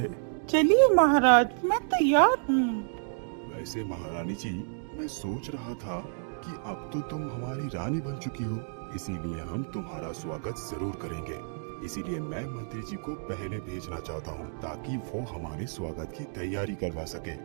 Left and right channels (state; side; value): silent; left; digital silence